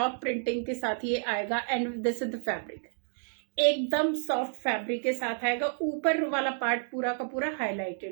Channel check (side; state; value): left; silent; digital silence